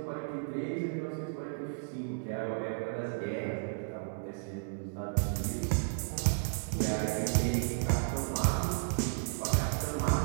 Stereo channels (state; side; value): silent; left; 55 dB below the other